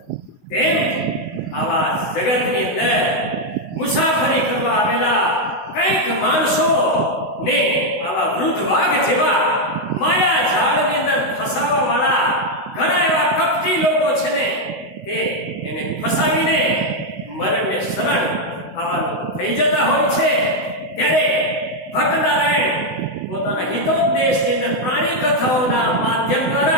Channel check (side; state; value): right; late; 16 ms